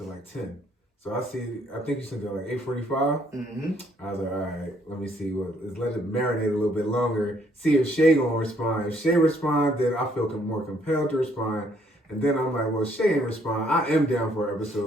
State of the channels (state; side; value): normal; both; correlation 0.67